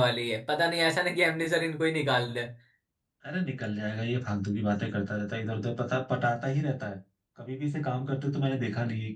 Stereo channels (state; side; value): identical; both; correlation 1.00